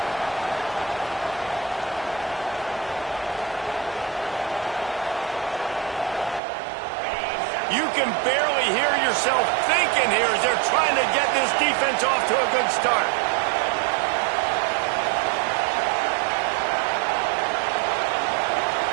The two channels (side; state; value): left; drops out; at 6.4 s